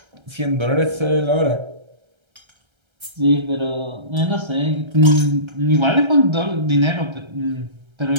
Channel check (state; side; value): late; left; 1.3 ms